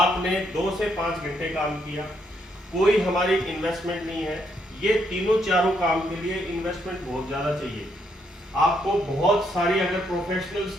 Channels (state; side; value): normal; both; correlation 0.75